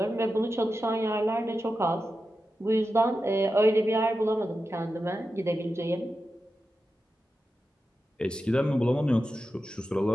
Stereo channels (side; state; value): both; normal; correlation 0.91